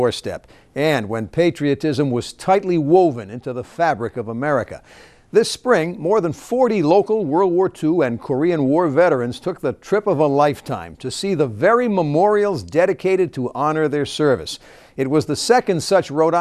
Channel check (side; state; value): both; identical; correlation 1.00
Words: and when patriotism was tightly woven into the fabric of America. This spring, more than 40 local World War II and Korean War veterans took the trip of a lifetime to see the very memorials dedicated to honor their service. It was the second such Rhode